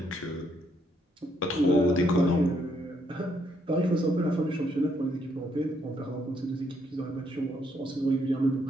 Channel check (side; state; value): both; normal; correlation 0.73